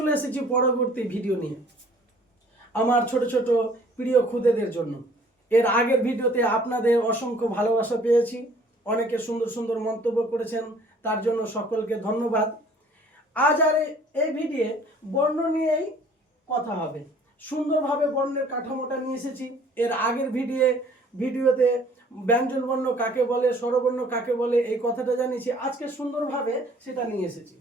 এসেছি পরবর্তী ভিডিও নিয়ে আমার ছোট ছোট প্রিয় খুদেদের জন্য। এর আগের ভিডিওতে আপনাদের অসংখ্য ভালোবাসা পেয়েছি, অনেকে সুন্দর সুন্দর মন্তব্য করেছেন, তার জন্য সকলকে ধন্যবাদ। আজ আর এই ভিডিও বর্ণ নিয়েই কথা হবে। সুন্দরভাবে বর্ণের কাঠামোটা নিয়ে এসেছি। এর আগের ভিডিওতে ব্যঞ্জন বর্ণ কাকে বলে, স্বরবর্ণ কাকে বলে এই কথাটা জানিয়েছি। আজকে সুন্দরভাবে সেটা নিয়ে এসেছি।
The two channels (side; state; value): both; normal; correlation 0.55